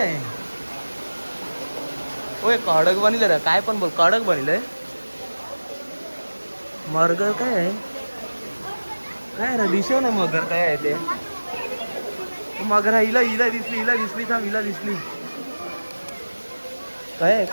ओय कडक बनिलं रे काय पण बोल कडक बनिलंय मगर काय आहे काय रे दिसव ना मगर काय आहे ते मगर हिला दिसली थांब हिला दिसली काय आहे?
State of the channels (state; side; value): inverted; both; correlation -1.00